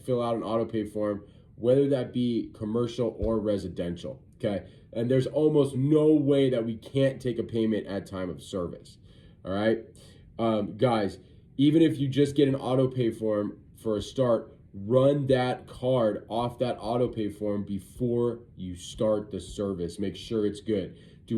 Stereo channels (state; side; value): identical; both; correlation 1.00